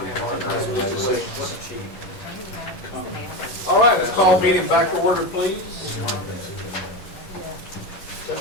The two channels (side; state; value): right; late; 10 ms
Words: All right, let's call meeting back to order, please.